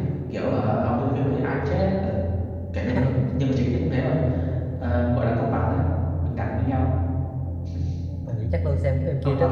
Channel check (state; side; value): identical; both; correlation 1.00